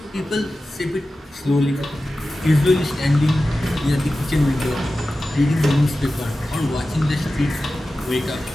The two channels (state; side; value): normal; both; correlation 0.94